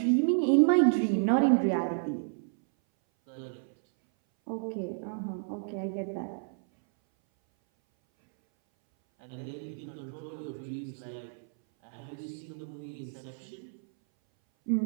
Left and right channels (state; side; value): silent; left; 57 dB below the other